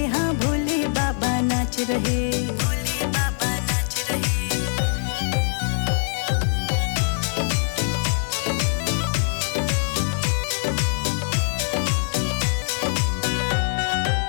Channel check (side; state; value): right; silent; digital silence